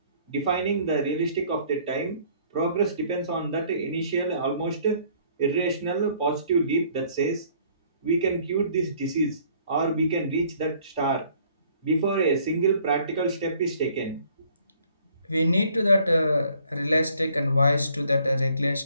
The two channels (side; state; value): both; inverted; correlation -0.60